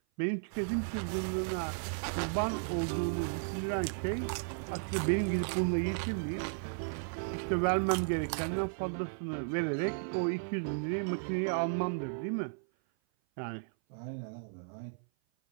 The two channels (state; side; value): silent; left; 55 dB below the other